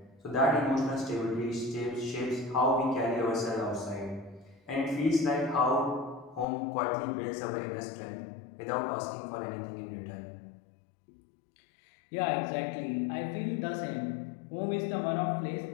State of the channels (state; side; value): drops out; right; at 6.5 s